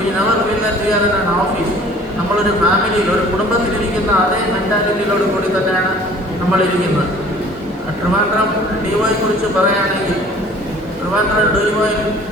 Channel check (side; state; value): both; normal; correlation 0.50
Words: never feel that we are in an office. നമ്മളൊരു ഫാമിലിയിൽ, ഒരു കുടുംബത്തിലിരിക്കുന്ന അതേ മെൻറ്റാലിറ്റിയിലോട് കൂടി തന്നെയാണ് നമ്മളിരിക്കുന്നത്. ട്രിവാൻഡ്രം DOയെ കുറിച്ച് പറയുകയാണെങ്കിൽ, ട്രിവാൻഡ്രം DOയിൽ